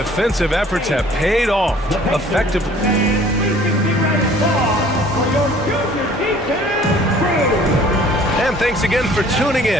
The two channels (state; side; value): normal; both; correlation 0.53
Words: efforts have paid off effectively. And thanks again for tuning